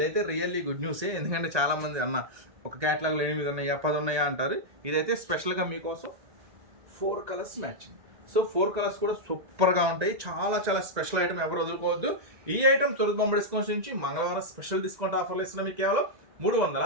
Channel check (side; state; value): left; late; 1.8 ms